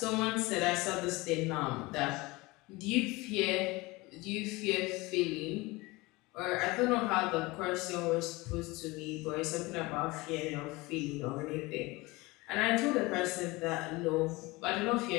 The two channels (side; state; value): right; quieter; 22.6 dB